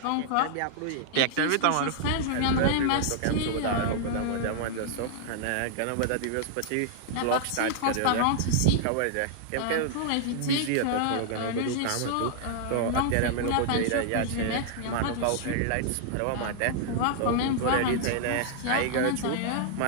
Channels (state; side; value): different; both; correlation -0.01